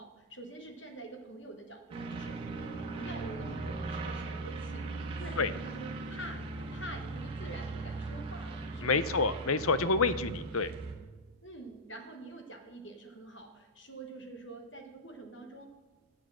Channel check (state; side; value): normal; both; correlation -0.01